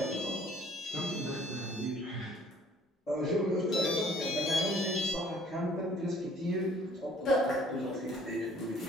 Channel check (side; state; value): both; normal; correlation 0.57